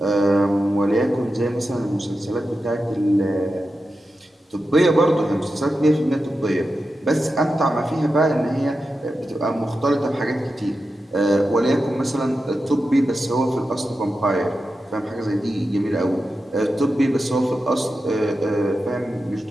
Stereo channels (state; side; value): normal; both; correlation 0.90